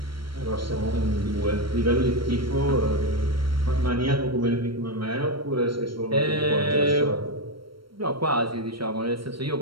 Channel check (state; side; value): late; left; 0.74 ms